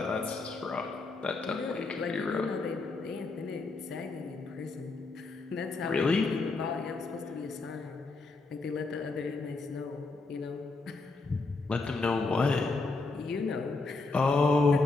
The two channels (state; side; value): quieter; right; 3.7 dB